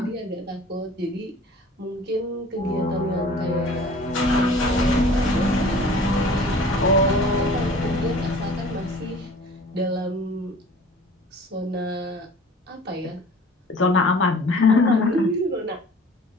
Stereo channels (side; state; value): both; normal; correlation 0.47